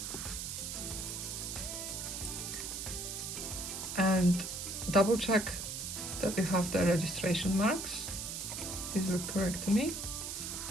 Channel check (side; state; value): right; noise; hiss, 5 dB below the sound